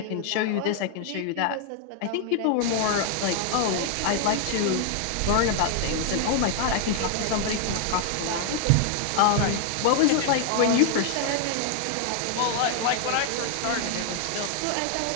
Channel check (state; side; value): different; both; correlation 0.00